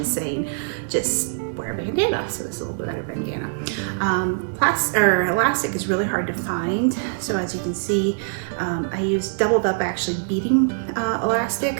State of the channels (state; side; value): silent; left; digital silence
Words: is saying just wear a bandana, so this is a little bit better bandana. Elastic is really hard to find, so as you can see, I used doubled up actually beading elastic